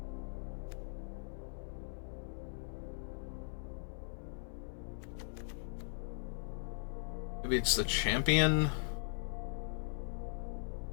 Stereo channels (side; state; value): right; silent; digital silence